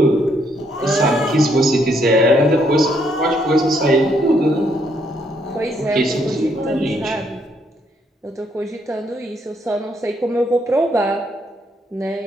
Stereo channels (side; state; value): both; normal; correlation 0.72